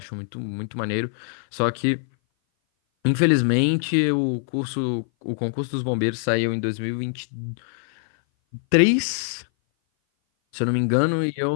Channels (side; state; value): right; silent; 58 dB below the other